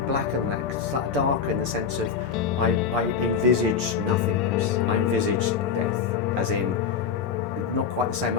than that, slightly darker in the sense of I envisaged nothingness. I envisaged death, as in, not quite the same.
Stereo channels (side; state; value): right; quieter; 6.3 dB